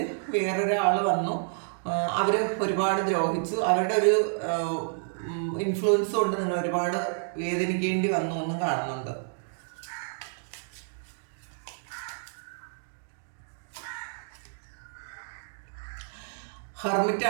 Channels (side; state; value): left; silent; digital silence